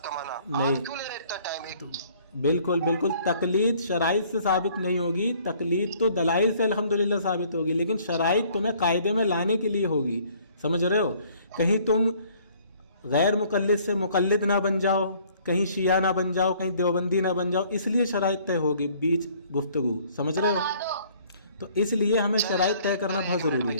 کا معنی نہیں, آپ کیوں لے رہے اتنا ٹائم؟ بالکل تقلید شرائط سے ثابت نہیں ہوگی. تقلید تو دلائل سے الحمدللہ ثابت ہوگی, لیکن شرائط تمہیں قاعدے میں لانے کے لیے ہوگی. سمجھ رہے ہو؟ کہیں تم غیر مقلد سے مقلد نہ بن جاؤ, کہیں شیعہ نہ بن جاؤ, کہیں دیوبندی نہ بن جاؤ, اس لیے شرائط طے ہوگی بیچ گفتگو. سمجھ رہے ہو؟ تو اس لیے ہمیں شرائط طے کرنا بہت ضروری ہے.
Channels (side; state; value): both; inverted; correlation -0.59